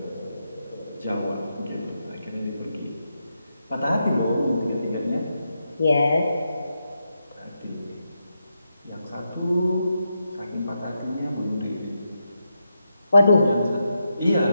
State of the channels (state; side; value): inverted; both; correlation -0.85